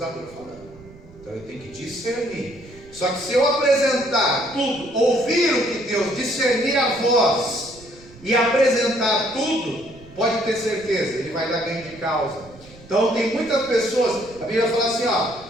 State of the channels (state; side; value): noise; right; rumble, 22 dB below the sound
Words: falando. Então eu tenho que discernir. Só que se eu apresentar tudo, ouvir o que Deus, discernir a voz e apresentar tudo, pode ter certeza, ele vai dar ganho de causa. Então tem muitas pessoas, a Bíblia fala assim, ó,